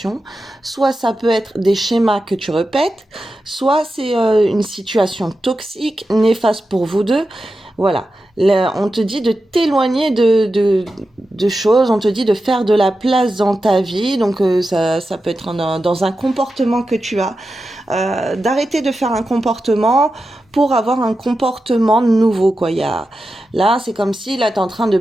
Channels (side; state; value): both; normal; correlation 0.91